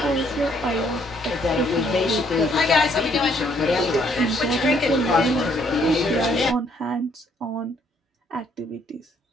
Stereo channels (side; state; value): both; normal; correlation 0.67